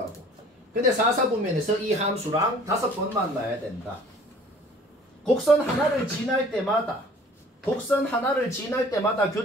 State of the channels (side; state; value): both; normal; correlation 0.51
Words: 근데 4사분면에서 이 함수랑 5번 만나야 된다. 곡선 하나를 지날 때마다